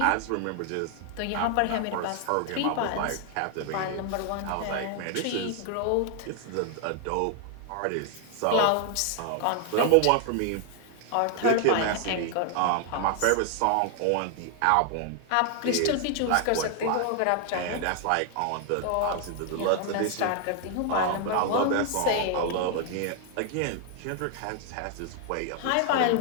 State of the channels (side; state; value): both; different; correlation 0.00